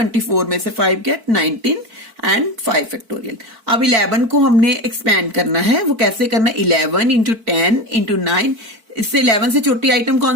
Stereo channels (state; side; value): late; left; 4.5 ms